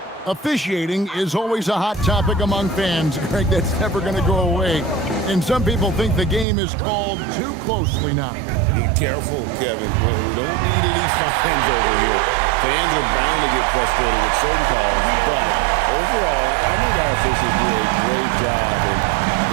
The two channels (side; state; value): left; drops out; at 6.5 s